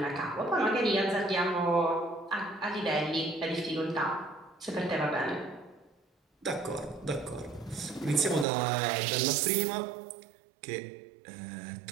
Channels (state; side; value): drops out; left; at 8.5 s